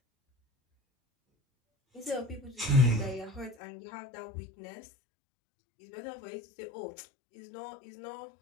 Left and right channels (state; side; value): drops out; right; at 3.6 s